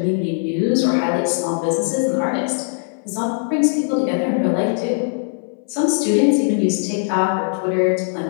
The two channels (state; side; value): silent; right; 61 dB below the other